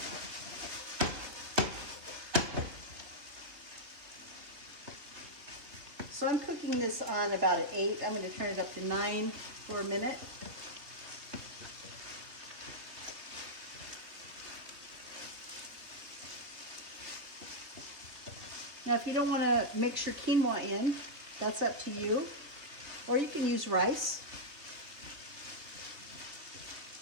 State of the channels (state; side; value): late; left; 3.3 ms